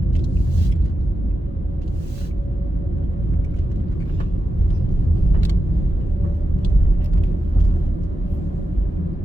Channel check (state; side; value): normal; both; correlation 0.89